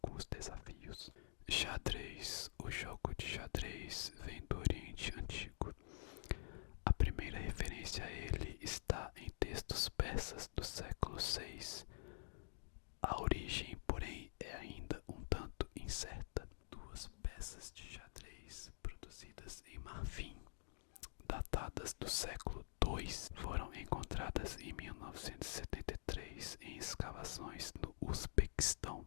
desafios. Xadrez. O jogo de xadrez vem do Oriente Antigo. A primeira referência a ele está em textos persas do século VI. A origem, porém, é ainda um tanto incerta. Duas peças de xadrez produzidas em marfim, datadas do século II, foram encontradas em 1973 em escavações no Uzbequistão.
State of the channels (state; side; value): silent; right; digital silence